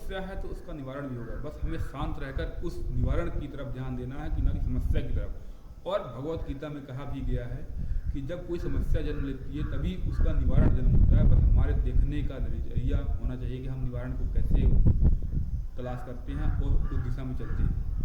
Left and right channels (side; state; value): both; identical; correlation 1.00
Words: है तो उसका निवारण भी होगा, बस हमें शांत रहकर उस निवारण की तरफ ध्यान देना है कि ना कि समस्या की तरफ। और भगवत गीता में कहा भी गया है कि जब कोई समस्या जन्म लेती है तभी उसका निवारण जन्म होता है। बस हमारे देखने का नजरिया होना चाहिए कि हम निवारण को कैसे तलाश करते हैं और उस दिशा में चलते हैं।